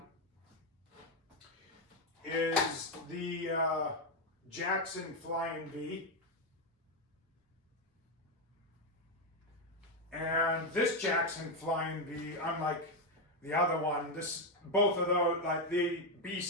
is the Jackson Flying V. And this Jackson Flying V, unlike the other one, both of those, like the B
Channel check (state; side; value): normal; both; correlation 0.06